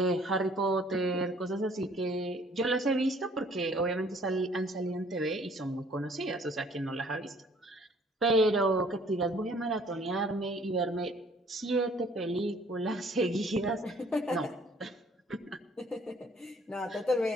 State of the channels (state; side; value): normal; both; correlation 0.58